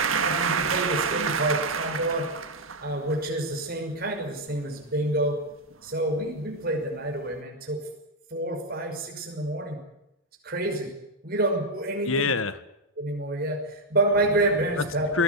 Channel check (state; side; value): normal; both; correlation 0.02